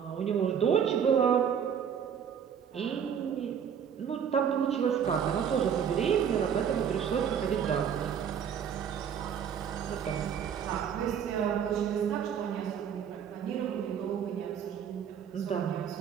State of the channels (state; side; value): quieter; left; 8.0 dB